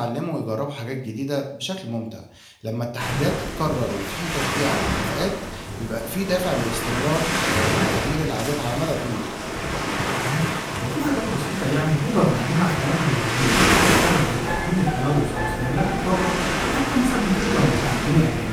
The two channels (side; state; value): both; identical; correlation 1.00